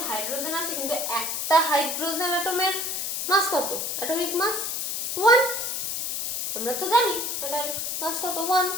হাইড্রোজেন আছে, কিন্তু একটা হাইড্রোজেন অ্যাটমের মাস কত, অ্যাটমিক মাস 1, আমরা তো জানি এটার মাস কত 1।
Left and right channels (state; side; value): noise; left; hiss, 2 dB below the sound